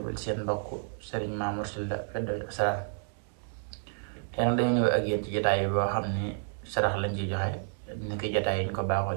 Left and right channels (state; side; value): silent; left; digital silence